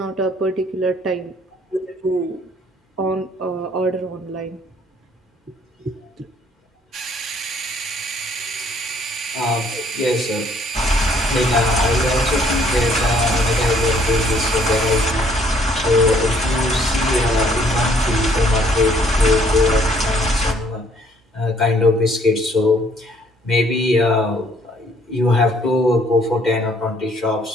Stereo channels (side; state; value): both; normal; correlation 0.63